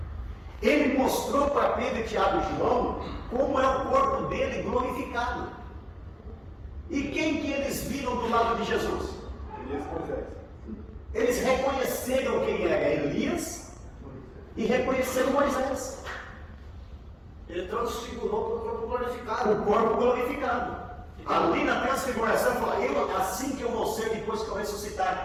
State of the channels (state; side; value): identical; both; correlation 1.00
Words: Ele mostrou para Pedro, Tiago e João como é o corpo dele glorificado. E quem que eles viram do lado de Jesus? Eles reconheceram quem era Elias e reconheceram Moisés. Ele transfigurou para o corpo glorificado. O corpo glorificado. Ali na transfiguração, falou, assim que eu vou ser depois que eu